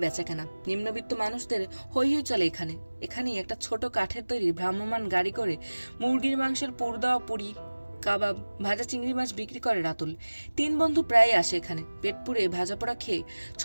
বেচাকেনা। নিম্নবিত্ত মানুষদের হৈ হৈ চলে এখানে। এখানেই একটা ছোট কাঠের তৈরি ভ্রাম্যমান গাড়ি করে মুরগির মাংসের পুর দেওয়া পুরি, কাবাব, ভাজা চিংড়ি মাছ বিক্রি করে রাতুল। 3 বন্ধু প্রায় আসে এখানে, পেট পুড়ে ভাজা পোড়া খেয়ে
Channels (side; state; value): both; inverted; correlation -1.00